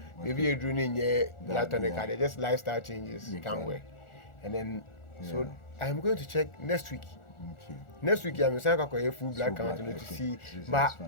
Maybe you do need blood tonic they just lifestyle changes can't work. And then so I am going to check next week. Next week I'm going to full blood count to see, but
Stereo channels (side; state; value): right; late; 1.4 ms